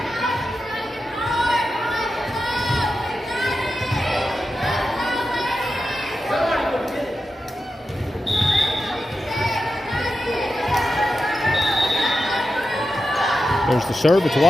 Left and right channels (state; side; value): normal; both; correlation 0.90